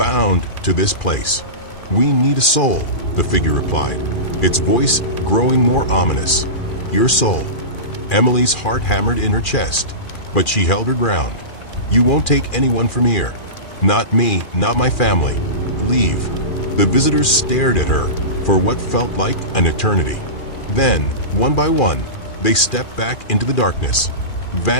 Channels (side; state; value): right; late; 2.4 ms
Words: to this place. We need a soul," the figure replied, its voice growing more ominous. "Your soul." Emily's heart hammered in her chest, but she held her ground. "You won't take anyone from here. Not me, not my family. Leave." The visitors stared at her for what felt like an eternity. Then, one by one, they stepped back into the darkness,